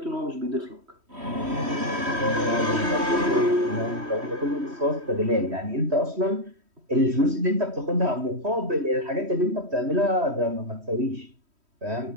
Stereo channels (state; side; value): late; left; 3.1 ms